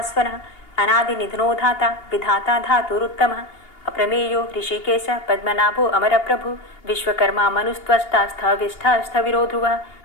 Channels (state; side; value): late; right; 2.8 ms